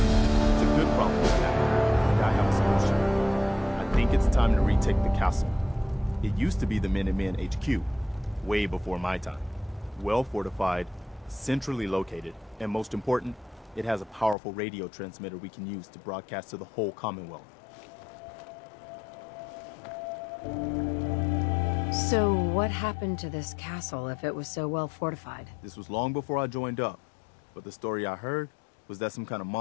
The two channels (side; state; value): right; drops out; at 14.4 s